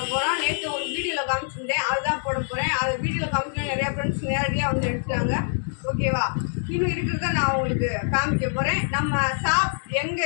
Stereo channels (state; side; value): silent; right; digital silence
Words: போறோம் நேத்து ஒரு வீடியோல காமிச்சிருந்தேன் அதுதான் போட போறேன் அது வீடியோல காமிச்சா நிறைய फ्रेंड्स நேரடியா வந்து எடுத்துட்டாங்க ஓகேவா இன்னும் இருக்குறத நான் உங்களுக்கு காமிக்க போறேன் நம்ம ஷாப் எங்க